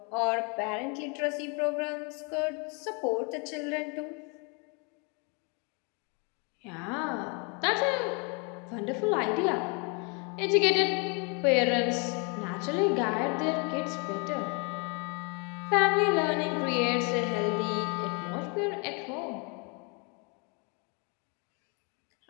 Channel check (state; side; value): quieter; right; 33.8 dB